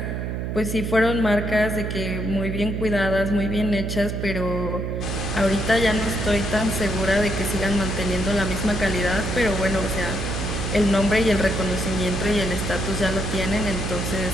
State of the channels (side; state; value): right; noise; hum, 3 dB below the sound